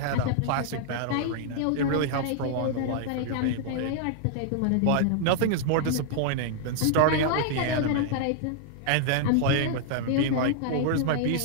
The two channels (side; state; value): both; different; correlation -0.01